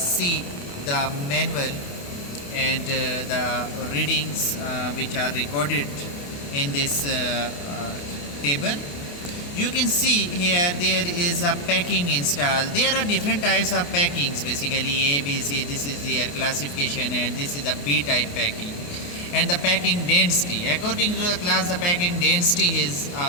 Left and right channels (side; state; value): right; late; 28 ms